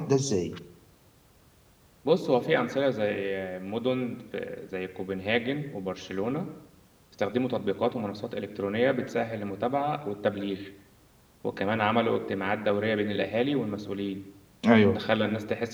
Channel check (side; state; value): both; identical; correlation 1.00